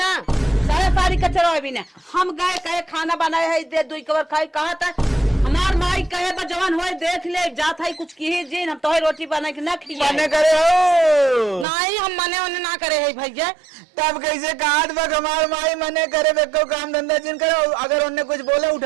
साया साड़ी कचरा भी ना। हम गए कहे खाना बनाए है दे 2 कवर खाई कहा था हमार माई कहे बा जवान होए देख ले जात है कुछ की जिन हम तो रोटी बना के ना खिया मने करे हो नहीं हम मने उन्हें ना करे है भैया। तब कैसे कहात बा हमार माई मने करे बेको काम धंधा जिन करो अगर उन्हें कुछ बोले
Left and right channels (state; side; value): drops out; left; at 11.7 s